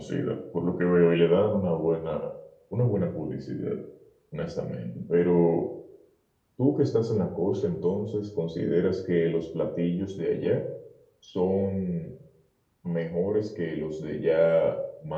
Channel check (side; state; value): both; identical; correlation 1.00